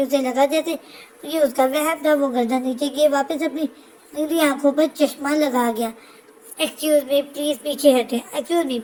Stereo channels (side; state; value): both; identical; correlation 1.00